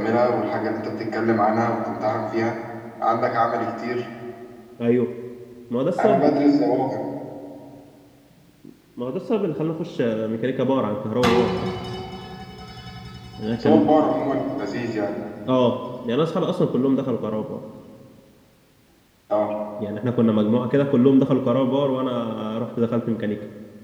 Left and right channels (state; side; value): identical; both; correlation 1.00